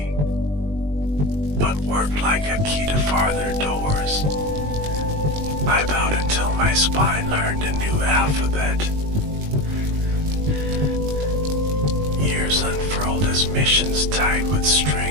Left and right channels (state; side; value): late; left; 20 ms